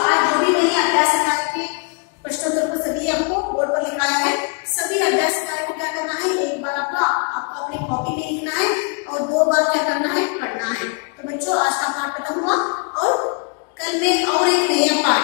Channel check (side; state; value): right; quieter; 35.8 dB